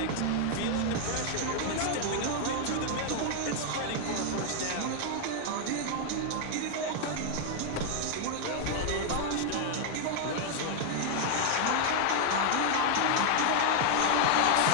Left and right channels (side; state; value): both; different; correlation 0.00